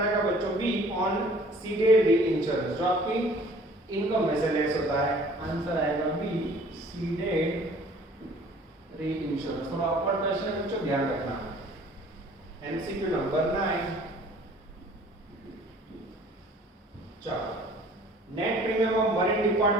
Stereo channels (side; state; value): both; normal; correlation 0.52